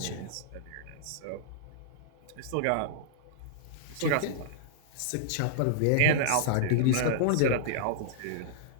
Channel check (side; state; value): both; different; correlation -0.02